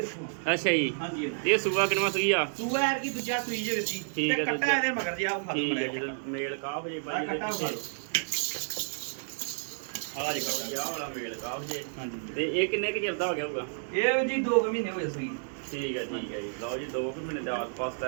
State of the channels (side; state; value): left; silent; digital silence